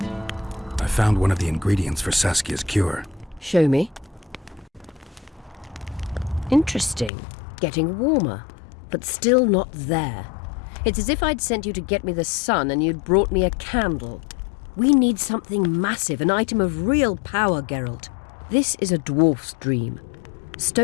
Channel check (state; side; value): drops out; right; at 7.1 s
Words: I found one of the ingredients for Saskia's cure. Show me. Interesting. Getting warmer, but still not there. It's as if I'd sent you to get me the sun and you'd brought me a candle. We need something massive, an item of real power, Geralt. This is a dwarf's dream.